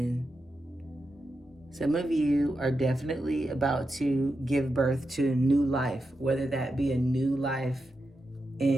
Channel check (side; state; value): both; normal; correlation 0.88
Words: Some of you are definitely about to give birth to a new life, whether that be a new life